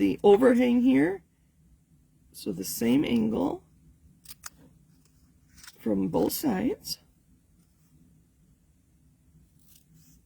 overhang here. So the same angle from both sides.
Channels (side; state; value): both; identical; correlation 1.00